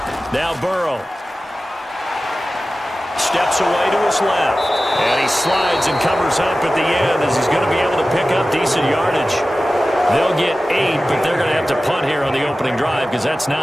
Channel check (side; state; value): both; normal; correlation 0.95